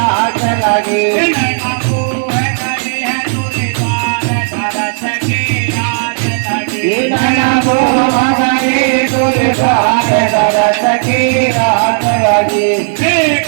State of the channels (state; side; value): silent; left; digital silence